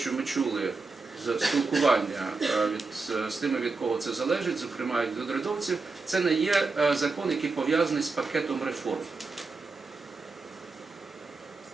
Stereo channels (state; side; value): quieter; left; 4.0 dB